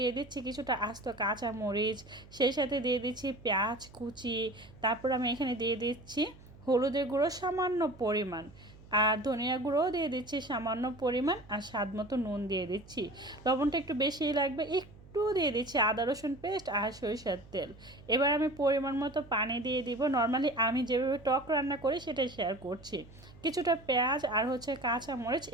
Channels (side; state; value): right; noise; hum, 21 dB below the sound